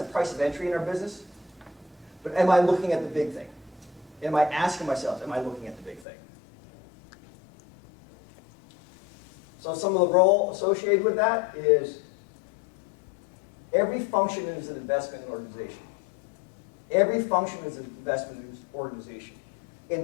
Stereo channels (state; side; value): drops out; right; at 6.1 s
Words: a price of entry in our business. But am I looking at the big thing? Am I asking myself, am I looking at the big thing? So some of the role associated with that is every function is an investment in an organization. Every function is an investment in an organization.